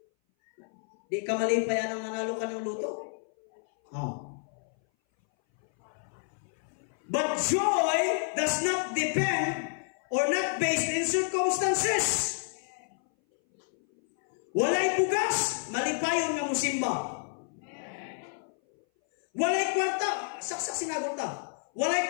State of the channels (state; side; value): silent; right; 58 dB below the other